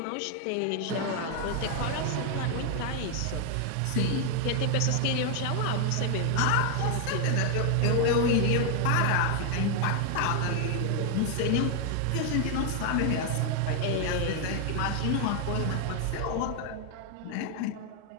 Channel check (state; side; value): different; both; correlation 0.00